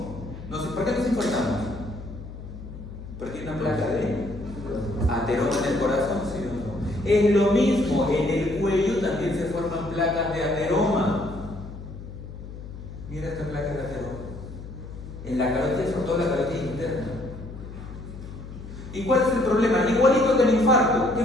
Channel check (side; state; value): left; noise; hum, 12 dB below the sound